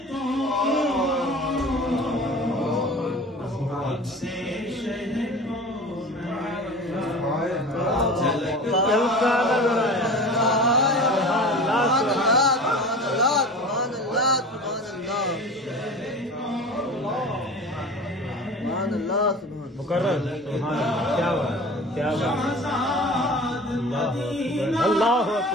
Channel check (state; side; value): normal; both; correlation 0.37